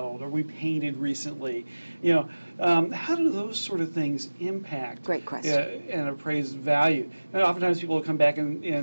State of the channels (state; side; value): inverted; both; correlation -1.00